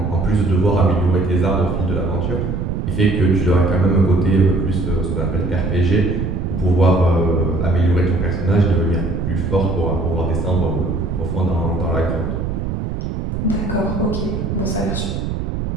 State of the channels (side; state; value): right; noise; rumble, 2 dB below the sound